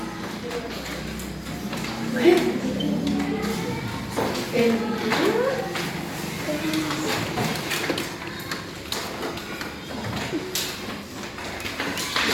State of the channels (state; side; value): identical; both; correlation 1.00